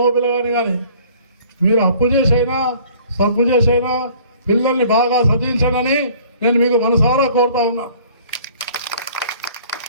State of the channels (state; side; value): inverted; both; correlation -0.53